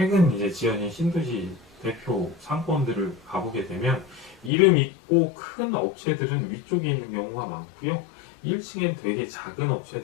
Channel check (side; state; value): right; drops out; at 4.5 s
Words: 이제 지어진 신도시 대표 상권들을 가보게 되면 이름 있고 큰 업체들은 위쪽에 있는 경우가 많고요. 1층엔 되게 작은